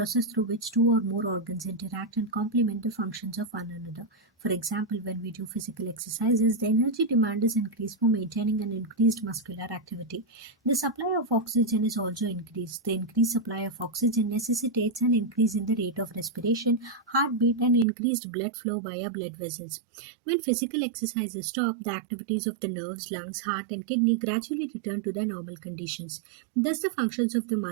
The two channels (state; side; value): drops out; left; at 17.9 s